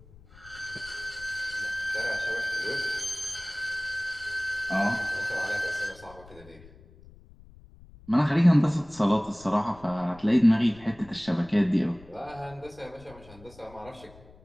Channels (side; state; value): left; noise; rumble, 22 dB below the sound